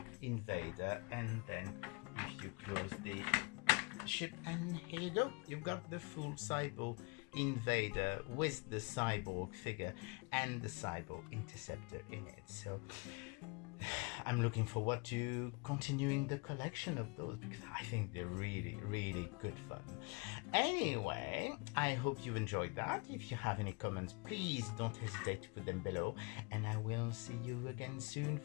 and then if you close the ship, and here you go, you've got the full Cybo-Invader with the Cyborg figure and the Cybo-Interceptor in it. So I'm looking forward to continuing the collection of those, because I think they're really good fun. Anyway, I hope you enjoyed that. If you have any comments, please don't hesitate to put them below, and I will see you again soon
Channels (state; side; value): quieter; right; 30.6 dB